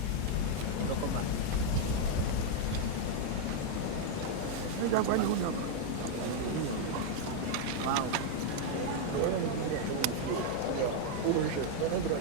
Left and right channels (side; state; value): both; different; correlation 0.00